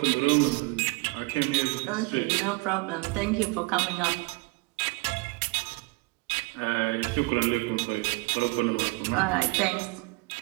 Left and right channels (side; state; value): left; quieter; 26.1 dB